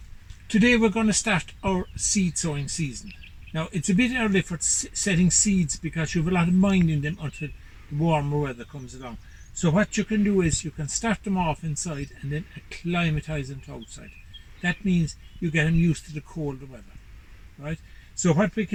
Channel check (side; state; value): both; identical; correlation 1.00